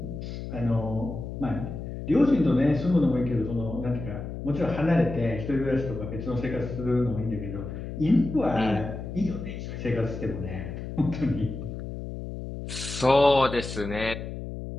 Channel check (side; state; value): left; noise; hum, 7 dB below the sound